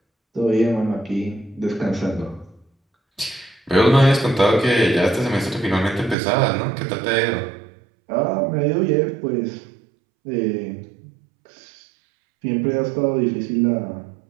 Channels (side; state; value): left; drops out; at 6.2 s